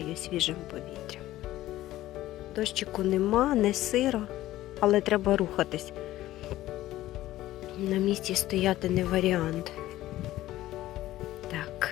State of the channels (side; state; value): right; quieter; 15.2 dB